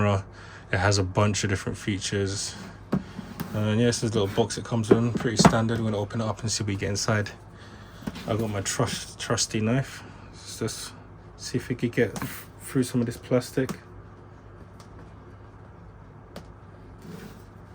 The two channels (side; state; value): both; identical; correlation 1.00